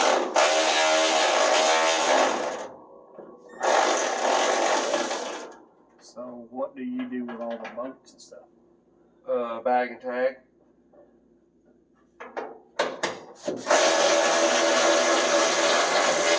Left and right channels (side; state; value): both; identical; correlation 1.00